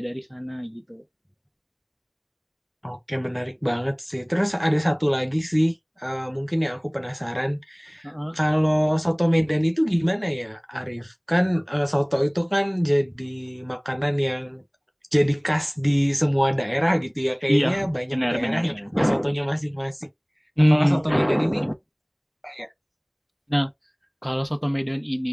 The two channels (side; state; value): both; identical; correlation 1.00